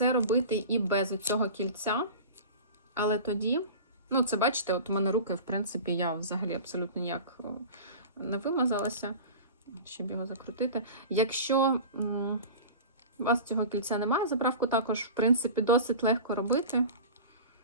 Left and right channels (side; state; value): both; inverted; correlation -0.34